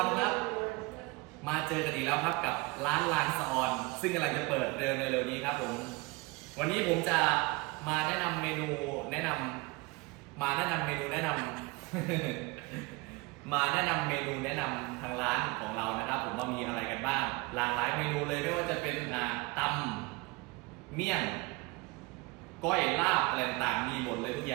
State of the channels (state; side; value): quieter; left; 24.6 dB